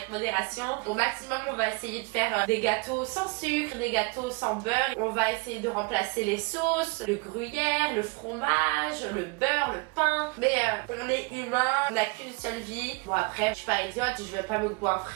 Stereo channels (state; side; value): quieter; left; 29.3 dB